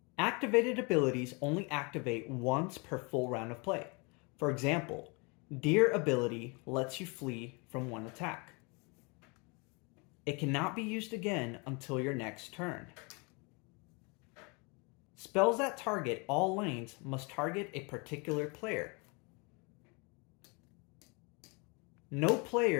Activated abilities only activate once per full round of play. For example, Deer ability lets you flee from one attack. It cannot be used again until your next turn. Spells that target all lanes must target a particular player. No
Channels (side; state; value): right; quieter; 30.8 dB